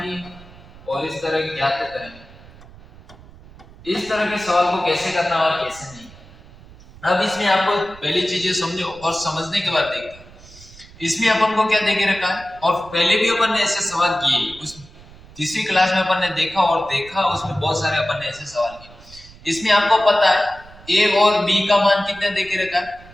और इस तरह ज्ञात करेंगे। इस तरह के सवाल को कैसे करना और कैसे नहीं। अब इसमें आपको पहली चीजें समझो और समझने के बाद देखते हैं इसमें अपन को क्या देके रखा है। और पहले भी अपन ने ऐसे सवाल किए, उस तीसरी क्लास में अपन ने देखा, उसमें बहुत सारे अपन ने ऐसे सवाल किए। इसमें आपको पता है ए और बी का मान कितना देके रखा है?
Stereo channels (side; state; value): right; noise; rumble, 21 dB below the sound